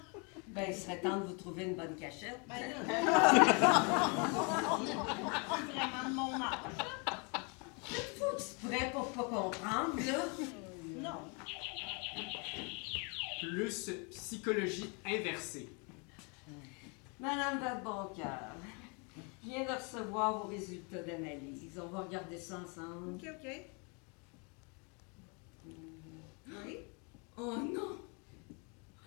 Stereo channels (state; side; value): quieter; right; 33.7 dB